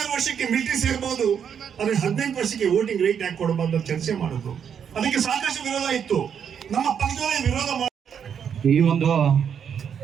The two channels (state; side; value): quieter; left; 7.8 dB